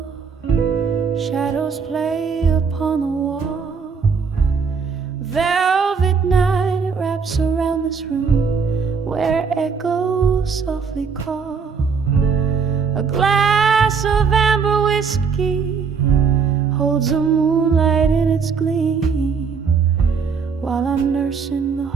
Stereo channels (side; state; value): left; quieter; 5.6 dB